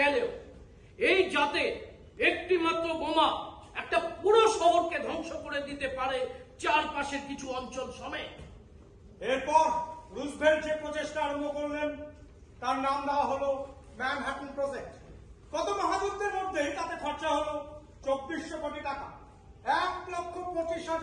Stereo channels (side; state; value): both; identical; correlation 1.00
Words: এই জাতে একটি মাত্র বোমা একটা পুরো শহরকে ধ্বংস করে দিতে পারে চারপাশের কিছু অঞ্চল সমেত। এরপর রুজভেল্ট যে প্রচেষ্টা আরম্ভ করলেন তার নাম দেওয়া হলো ম্যানহাটন প্রজেক্ট। গত মহাযুদ্ধের মধ্যেই তাতে খরচা হলো 2400 কোটি টাকা।